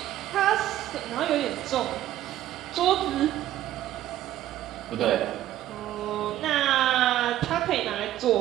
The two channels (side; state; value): left; quieter; 13.2 dB